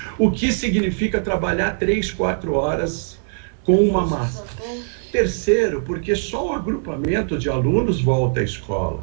o que significa trabalhar 3, 4 horas com uma máscara. Terceiro, porque só um agrupamento de alunos volta à escola,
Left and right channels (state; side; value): silent; left; 65 dB below the other